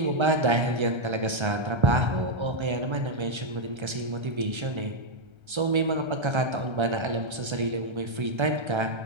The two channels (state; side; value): late; left; 1.3 ms